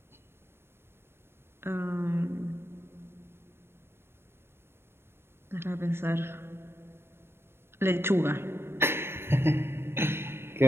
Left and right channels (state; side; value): late; left; 0.12 ms